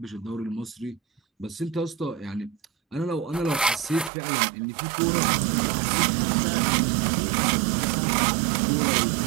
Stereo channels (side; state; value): left; drops out; at 4.1 s